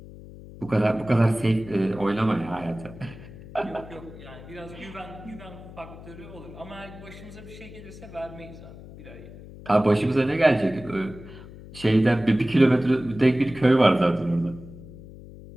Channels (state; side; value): noise; left; hum, 16 dB below the sound